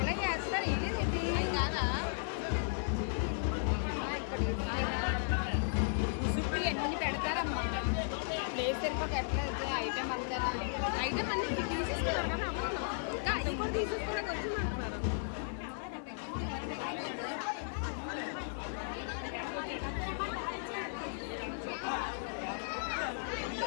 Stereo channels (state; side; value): silent; right; digital silence